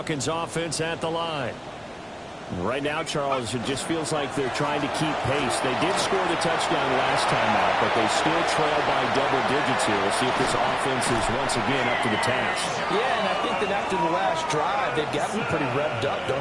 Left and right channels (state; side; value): identical; both; correlation 1.00